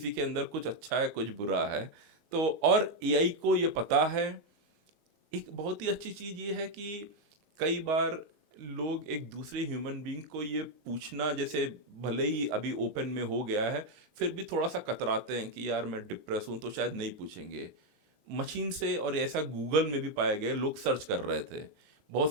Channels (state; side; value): late; left; 39 ms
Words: के अंदर कुछ अच्छा है कुछ बुरा है. तो और एआई को ये पता है. एक बहुत ही अच्छी चीज ये है कि कई बार लोग एक दूसरे ह्यूमन बीइंग को ये पूछना, जैसे भले ही अभी ओपन में हो गया है, फिर भी थोड़ा सा कतराते हैं कि यार मैं डिप्रेस हूं, तो शायद नहीं पूछेंगे मशीन से. और ऐसा गूगल में भी पाया गया, लोग सर्च कर रहे थे,